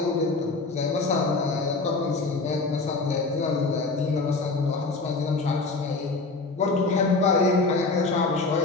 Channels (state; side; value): quieter; right; 3.7 dB